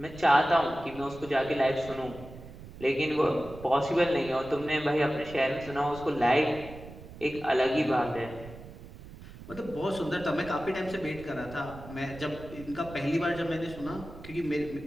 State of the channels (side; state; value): right; noise; rumble, 15 dB below the sound